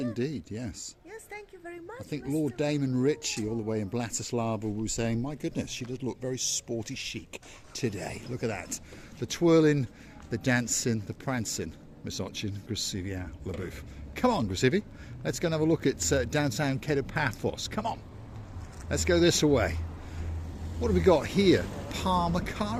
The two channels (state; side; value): identical; both; correlation 1.00